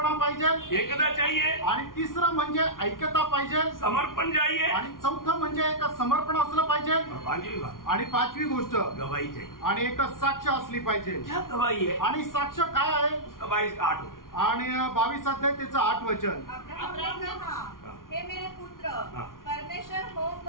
पाहिजे, एकता चाहिए, आणि तिसरं म्हणजे ऐक्यता पाहिजे, समर्पण चाहिए, आणि चौथं म्हणजे एक समर्पण असलं पाहिजे, और 5वीं बात आणि 5वी गोष्ट गवाही चाहिए। आणि एक साक्ष असली पाहिजे। क्या गवाही है? आणि साक्ष काय आहे? गवाही का 8 आणि 22 अध्याय त्याचं 8 वचन। अब्राहम कहा, हे मेरे पुत्र, परमेश्वर होम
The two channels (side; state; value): right; late; 0.90 ms